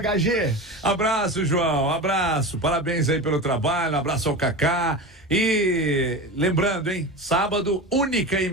Abraço, João, abraço. Parabéns aí pelo trabalho, abraço ao Kaká. E lembrando, hein, sábado, única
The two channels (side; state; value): both; normal; correlation 0.27